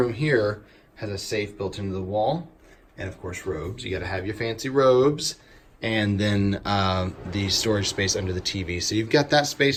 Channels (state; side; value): identical; both; correlation 1.00